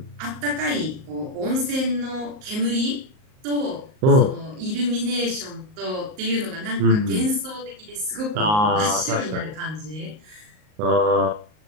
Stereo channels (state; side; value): late; left; 38 ms